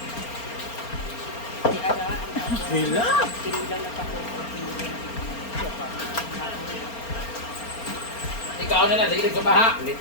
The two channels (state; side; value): late; right; 4.3 ms